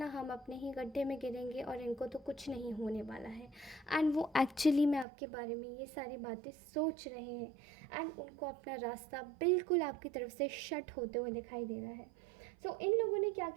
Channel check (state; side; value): drops out; left; at 5.1 s